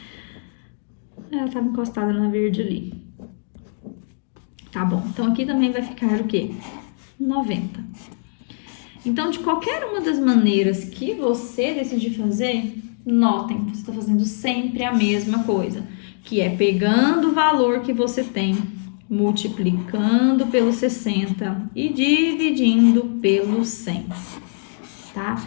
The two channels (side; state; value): right; silent; digital silence